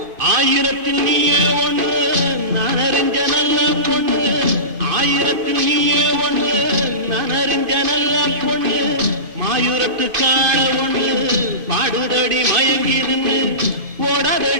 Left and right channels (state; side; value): late; left; 2.5 ms